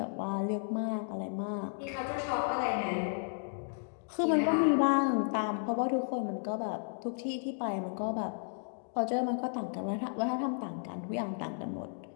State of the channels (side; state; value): right; silent; digital silence